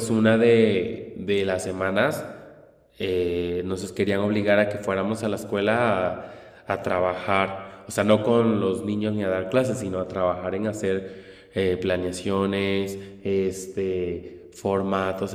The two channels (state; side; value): identical; both; correlation 1.00